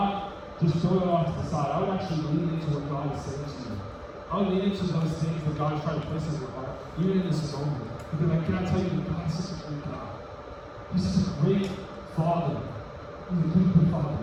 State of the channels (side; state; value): both; identical; correlation 1.00